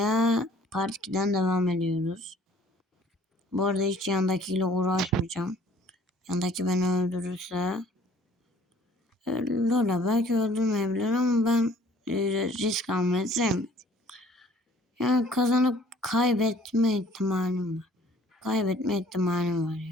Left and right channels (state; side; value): normal; both; correlation 0.55